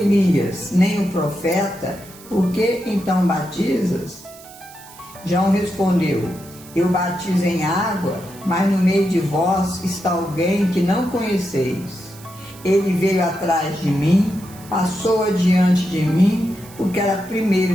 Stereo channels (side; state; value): right; noise; hiss, 20 dB below the sound